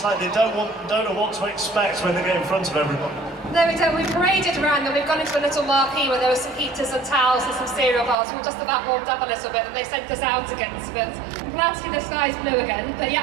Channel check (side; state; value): left; drops out; at 8.2 s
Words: like they don't know what to expect when they get in front of everyone. No, we don't. We've paraded around and we've gone into a little marquee where there were some heaters and towels and some cereal bars. We're just about warmed up a little bit and they sent us out again. But I'm glad to see the skies blue again. But